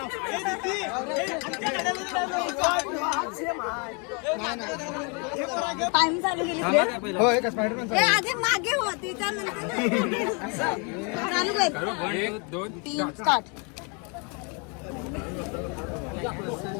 टाइम चालू केली. होय का स्पायडरमॅन? आधी मागे होती त्यानंतर चालू कर. 1 2 3 स्टार्ट.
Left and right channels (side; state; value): right; quieter; 34.3 dB